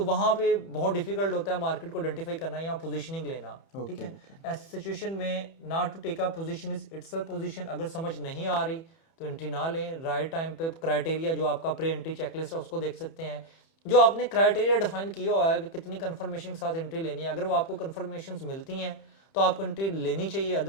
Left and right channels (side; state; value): right; late; 30 ms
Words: वहाँ पे बहुत डिफिकल्ट होता है मार्केट को आइडेंटिफाई करना या पोजीशनिंग लेना, ठीक है। ऐसी सिचुएशन में not to take a position is itself position, अगर समझ नहीं आ रही तो एंट्री ना लें। राइट टाइम पे क्राइटेरिया जो आपका प्री एंट्री चेकलिस्ट है उसको देख सकते हैं, जो आपने क्राइटेरिया डिफाइन किया हुआ है कि कितनी कंफर्मेशन के साथ एंट्री लेनी है। अगर वो आपको कंफर्मेशन मिलती हैं तो आपको एंट्री लेनी चाहिए,